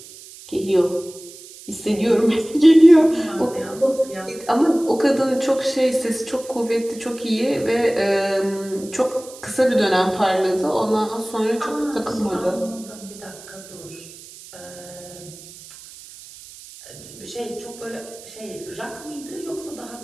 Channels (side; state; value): right; noise; hiss, 18 dB below the sound